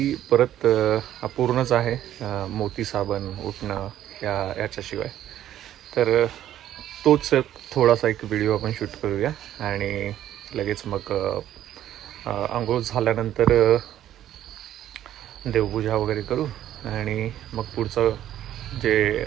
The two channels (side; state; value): left; quieter; 11.9 dB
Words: परत अपूर्णच आहे मोती साबण उठणं याच्याशिवाय. तर तोच थोडासा एक व्हिडिओ आपण शूट करूया आणि लगेच मग आंघोळ झाल्यानंतर देवपूजा वगैरे करू आणि मग पुढचं